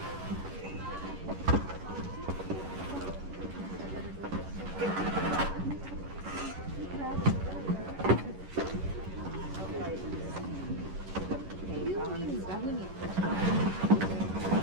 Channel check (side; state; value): left; late; 11 ms